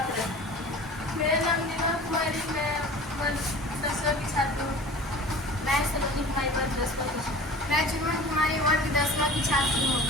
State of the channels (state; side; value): normal; both; correlation 0.40